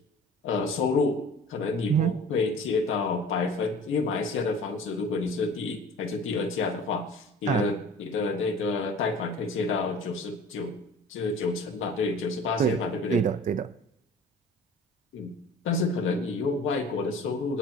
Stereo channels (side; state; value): both; normal; correlation 0.43